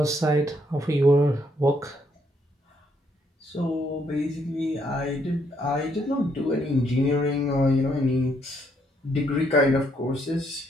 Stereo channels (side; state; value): both; normal; correlation 0.72